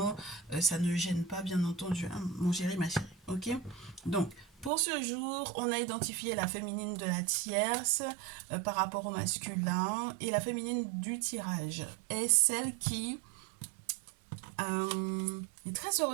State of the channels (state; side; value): drops out; left; at 4.7 s